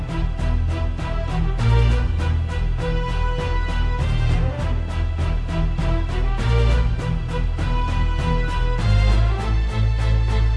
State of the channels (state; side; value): identical; both; correlation 1.00